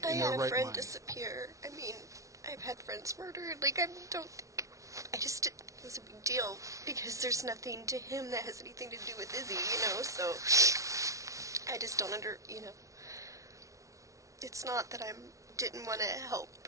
I their had a right friend mind. disappear. I mean, I've had friends murdered. Like, I just didn't think it was a big deal because there's nothing to him that has anything to do with Izzy, so I just don't it's not that I didn't want to help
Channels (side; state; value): left; late; 0.16 ms